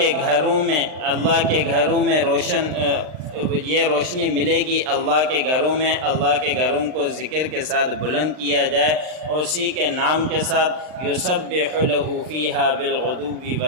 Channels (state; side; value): late; left; 39 ms